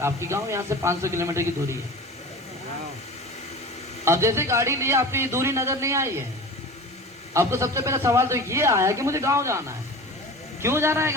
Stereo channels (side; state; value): both; normal; correlation 0.35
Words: आपकी गाँव यहाँ से 500 किलोमीटर की दूरी है। अब जैसे गाड़ी लिए आपकी दूरी नजर नहीं आई है, आपको सबसे पहला सवाल तो ये आया कि मुझे गांव जाना है। क्यों जाना है